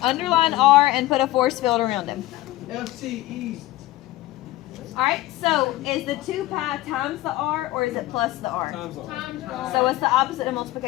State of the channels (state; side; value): quieter; right; 17.0 dB